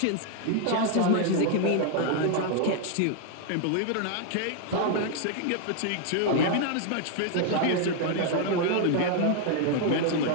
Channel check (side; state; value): both; different; correlation 0.00